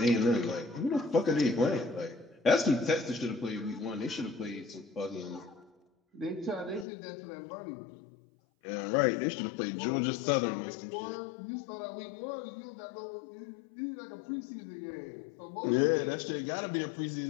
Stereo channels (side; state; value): right; drops out; at 6.9 s